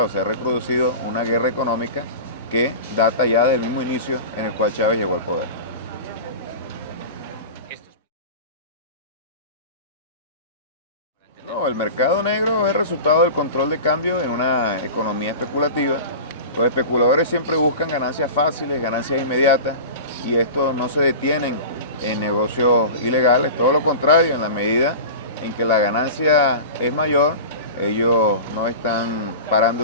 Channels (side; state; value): both; inverted; correlation -0.33